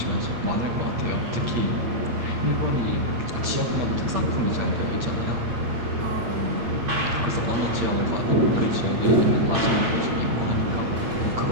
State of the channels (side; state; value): left; late; 8.7 ms